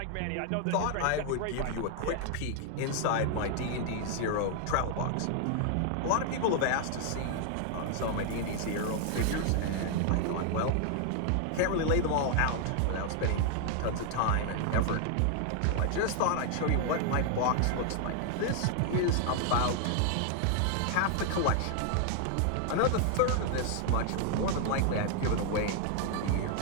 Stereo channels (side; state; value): both; different; correlation 0.00